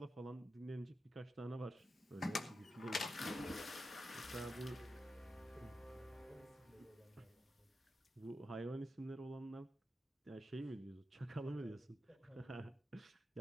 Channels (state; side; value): normal; both; correlation 0.89